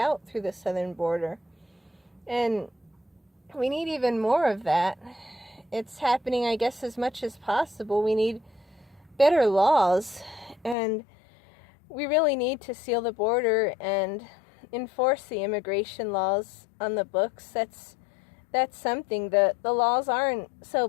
through the southern border. And we need even more of that. It's happening, I guess, as much as possible. We need better laws, and we really need to seal the border and enforce the immigration laws on the books. That's something. The laws aren't so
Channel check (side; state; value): right; drops out; at 10.8 s